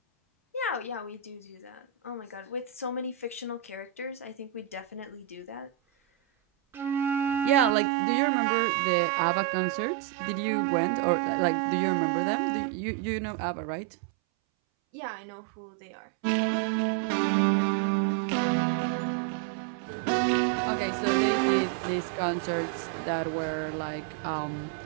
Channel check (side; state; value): left; drops out; at 7.8 s